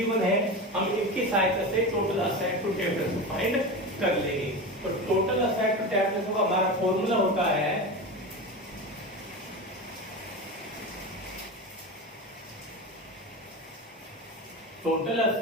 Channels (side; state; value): both; normal; correlation 0.24